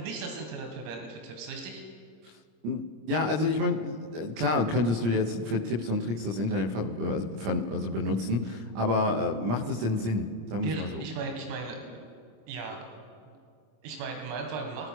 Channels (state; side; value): late; left; 26 ms